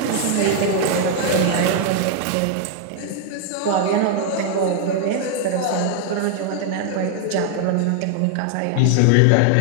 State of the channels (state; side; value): different; both; correlation 0.00